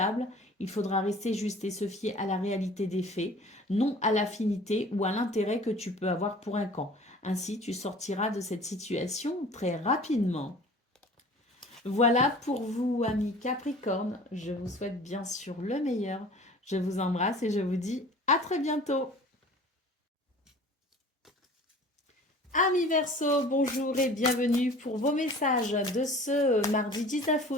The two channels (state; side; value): normal; both; correlation 0.45